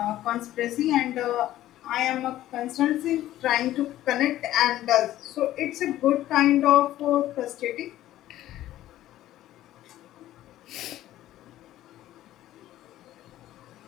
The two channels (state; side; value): quieter; right; 14.0 dB